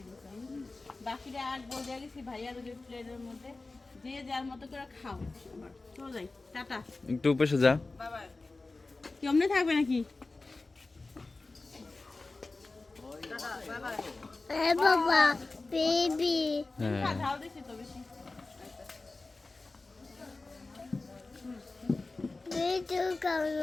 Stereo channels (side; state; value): right; quieter; 3.4 dB